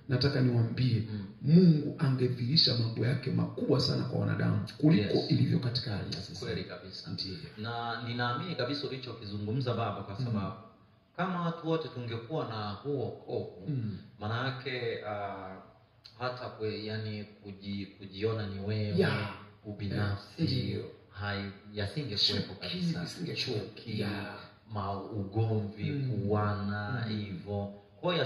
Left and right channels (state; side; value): identical; both; correlation 1.00